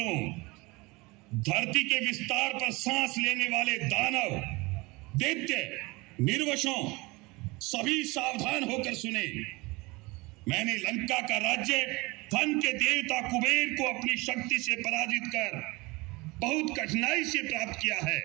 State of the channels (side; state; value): left; quieter; 24.0 dB